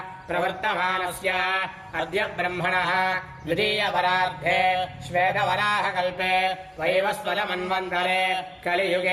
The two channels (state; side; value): identical; both; correlation 1.00